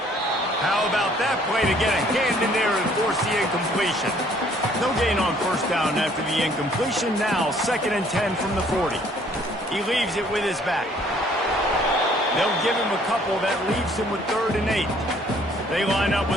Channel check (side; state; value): both; normal; correlation 0.60